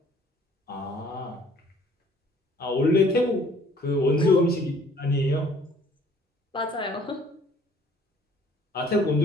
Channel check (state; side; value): normal; both; correlation 0.57